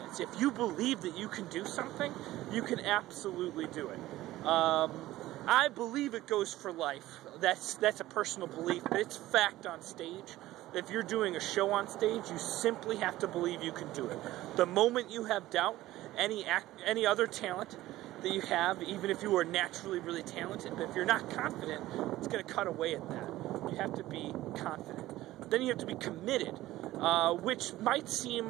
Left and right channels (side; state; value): left; quieter; 16.0 dB